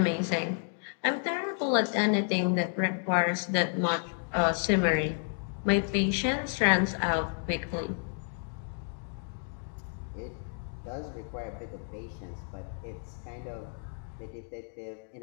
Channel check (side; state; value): right; silent; 57 dB below the other